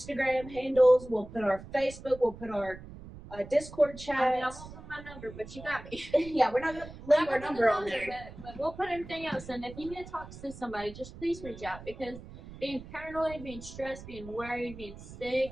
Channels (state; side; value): noise; right; rumble, 15 dB below the sound